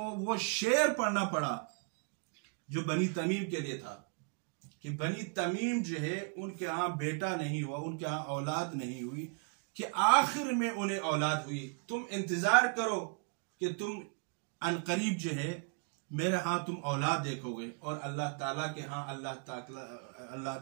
وہ شعر پڑھنا پڑا جو بنی تمیم کے لیے تھا کہ بنی تمیم جو ہے ان کے ہاں بیٹا نہیں ہوا، ان کے ہاں اولاد نہیں ہوئی، کہ آخر میں انہیں اولاد ہوئی. تم انتظار کرو کہ تم عنقریب جو ہے میرے ہاں تم اولاد دیکھو گے. اور اللہ تعالیٰ کے ہاں اللہ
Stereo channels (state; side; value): quieter; left; 37.7 dB